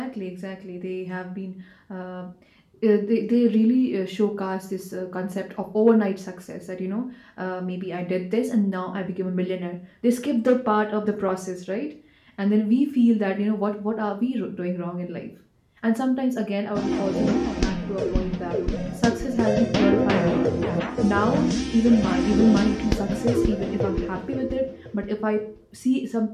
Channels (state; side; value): identical; both; correlation 1.00